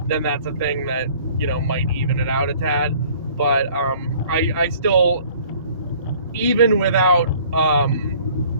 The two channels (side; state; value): both; inverted; correlation -0.53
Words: then that's a thing that, you know, might even it out a tad. But I still, even without